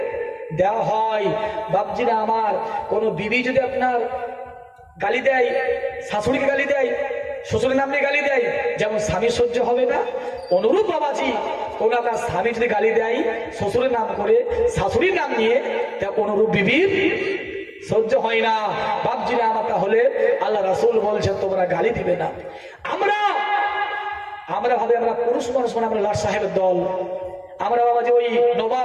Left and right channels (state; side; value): identical; both; correlation 1.00